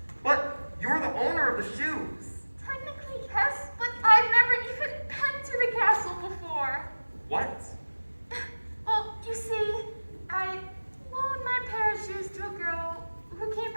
But you're the owner of the shoes. Technically, yes, but I've never even been to the castle before. What? Well, you see, I loaned my pair of shoes to a girl who came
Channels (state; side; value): inverted; both; correlation -1.00